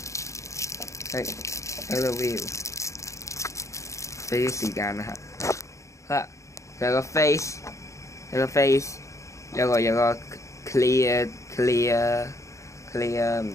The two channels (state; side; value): late; right; 0.15 ms